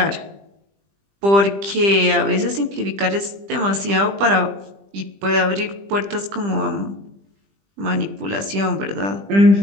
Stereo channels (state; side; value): late; left; 20 ms